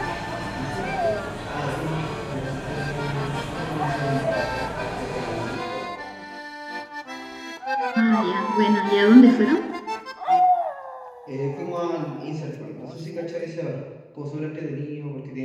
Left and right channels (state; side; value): identical; both; correlation 1.00